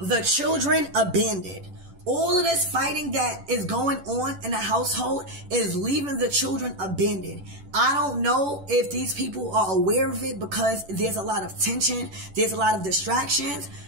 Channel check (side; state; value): left; late; 11 ms